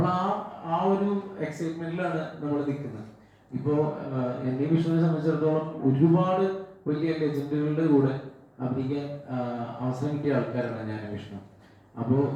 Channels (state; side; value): identical; both; correlation 1.00